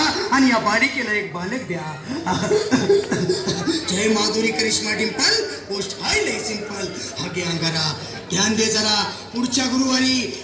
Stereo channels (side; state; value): both; identical; correlation 1.00